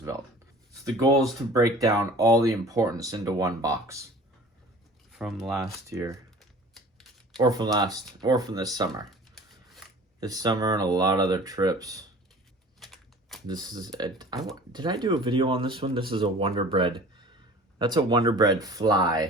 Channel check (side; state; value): both; normal; correlation 0.44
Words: So the goal is to break down all the importance into one box from last year, or from this summer. This summer and a lot of other trips. This is did I do a video on this one? This is a Wonder Bread. That's a Wonder Bread